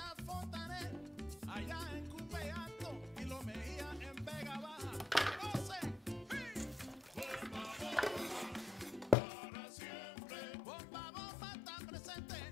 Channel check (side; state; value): right; drops out; at 9.2 s